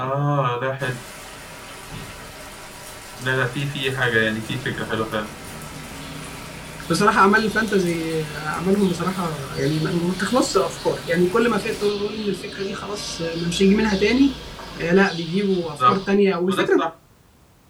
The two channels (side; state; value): both; identical; correlation 1.00